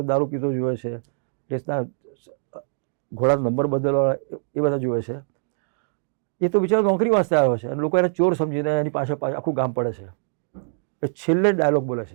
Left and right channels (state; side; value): silent; left; digital silence